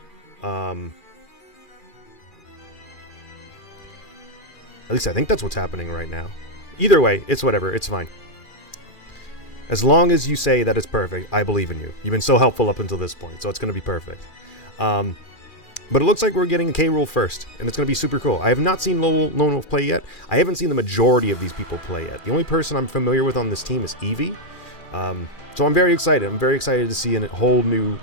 At least I think that's what's happening right now. Either way, it's whatever. It's fine. As long as you say that it's perfect, I believe in you. You've been so helpful up until this point, so it's going to be perfect. But it looks like we're getting a K-Roll first, and it's going to be super cool. I have not seen Lone Wolf play yet. I haven't seen the majority of these people play yet. The only person I'm familiar with on this team is Eevee. So I'm very excited. I'm very excited to see a whole new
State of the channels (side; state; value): right; late; 2.4 ms